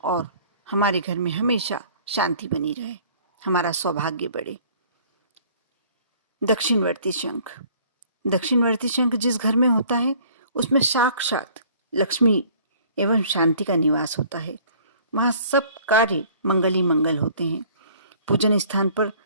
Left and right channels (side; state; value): both; inverted; correlation -0.54